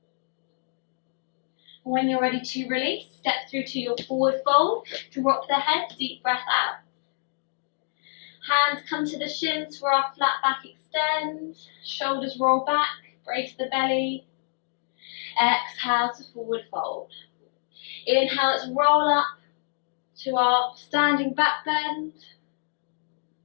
When you're ready to release, step through to your forward fold, drop the head, deep breath out. Hands come to the shins for our flat back extend, shoulders roll back, brace the belly. Exhale to forward fold. Inhale, let's roll up to our standing back bend.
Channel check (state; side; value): silent; right; digital silence